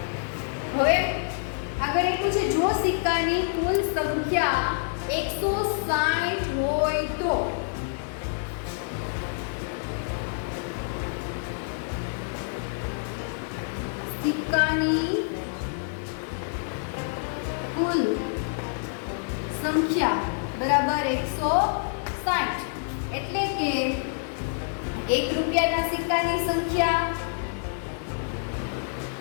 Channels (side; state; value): right; silent; digital silence